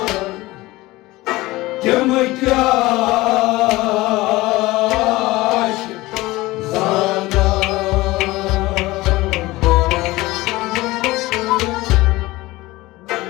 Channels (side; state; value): right; quieter; 19.5 dB